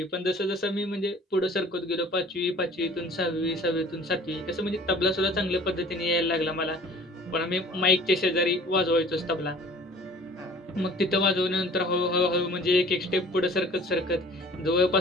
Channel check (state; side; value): normal; both; correlation 0.48